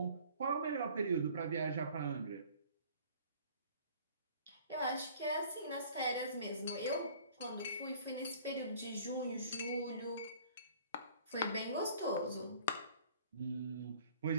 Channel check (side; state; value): both; inverted; correlation -0.52